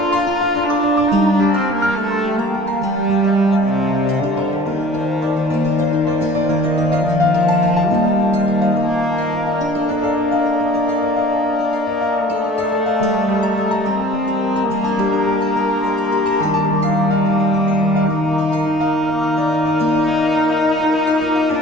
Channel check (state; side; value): normal; both; correlation 0.47